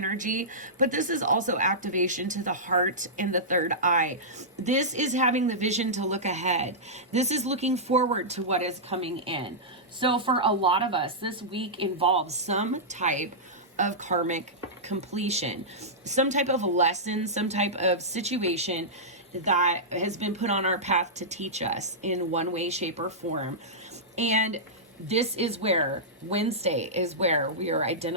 but this is also activation to the heart and the third eye. This is having the vision to look ahead. This is looking forward to what is coming in. So for a lot of us, this week involves some type of karmic completion, some type of lesson, some type of situation that has been put on our path to teach us in one way, shape, or form. And this is where Wednesday is where we are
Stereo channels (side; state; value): both; normal; correlation -0.13